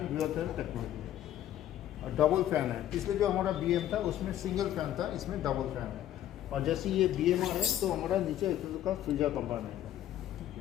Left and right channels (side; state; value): right; quieter; 12.0 dB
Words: dual fan technology है. और डबल फैन है. इसलिए जो हमारा BM था उसमें सिंगल फैन था, इसमें डबल फैन है. और जैसे ये BMR है तो हमारा नीचे का फ्रीजर कंपार्टमेंट है.